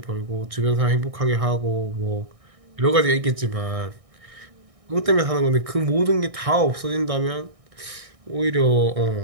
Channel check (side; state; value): left; late; 1.6 ms